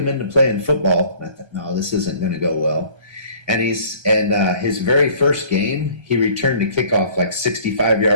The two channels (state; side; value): late; left; 1.3 ms